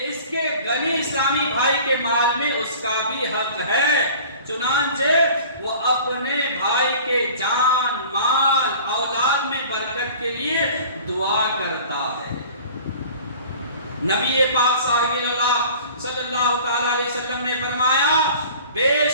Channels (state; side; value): inverted; both; correlation -0.45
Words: اس کے غنی اسلامی بھائی کے مال میں اس کا بھی حق ہے. چنانچہ وہ اپنے بھائی کے جان مال اولاد میں برکت کے لیے دعا کرتا ہے. نبی پاک صاحب اللہ صلی اللہ تعالی علیہ وسلم نے فرمایا بے